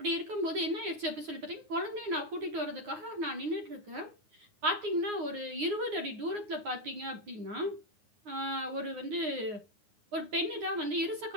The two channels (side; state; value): left; late; 9.6 ms